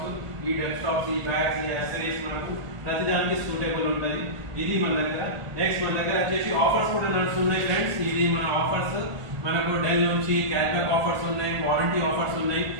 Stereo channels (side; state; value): left; late; 1.6 ms